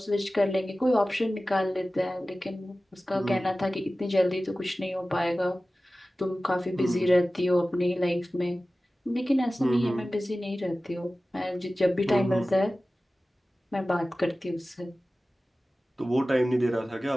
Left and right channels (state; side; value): normal; both; correlation 0.96